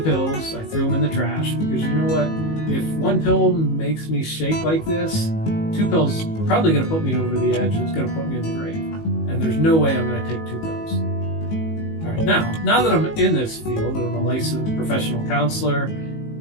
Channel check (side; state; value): right; late; 19 ms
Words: I threw them in the trash, because you know what? If 1 pill makes me shake like this, 2 pills are probably going to put me over the edge. It's going to put me in the grave. And there's no way I'm going to take 2 pills. All right, now that I'm in this field, I'm a licensed professional counselor,